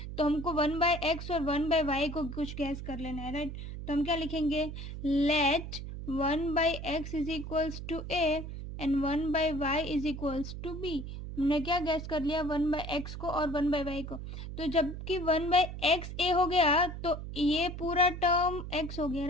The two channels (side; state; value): right; noise; hum, 8 dB below the sound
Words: तो हमको 1/x और 1/y को कुछ गैस कर लेना है, राइट. तो हम क्या लिखेंगे, let 1/x is equals to a and 1/y is equals to b. हमने क्या गैस कर लिया, 1/x को और 1/y को. तो जबकि 1/x a हो गया तो ये पूरा टर्म x हो गया,